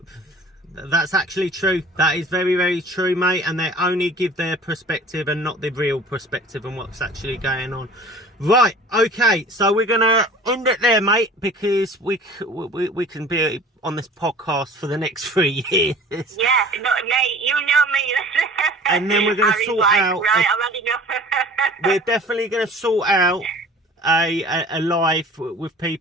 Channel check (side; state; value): both; normal; correlation 0.45